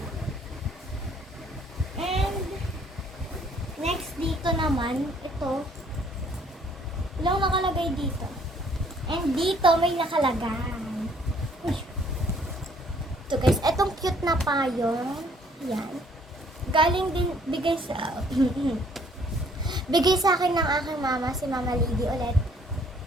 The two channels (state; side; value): normal; both; correlation 0.61